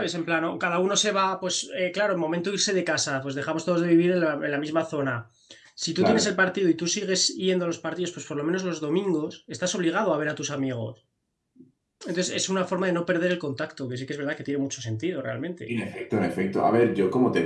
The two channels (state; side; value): identical; both; correlation 1.00